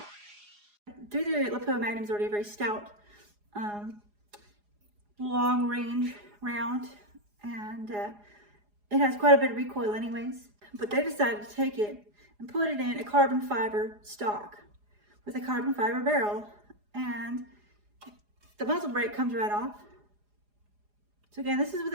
338 Lapua Magnum is already a very stout, long range round, and it has quite a bit of recoil anyways. But they decided to take it and put it in a carbon fiber stock with a carbon fiber barrel, and the muzzle brake comes right off. So again, this is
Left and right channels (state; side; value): late; left; 4.9 ms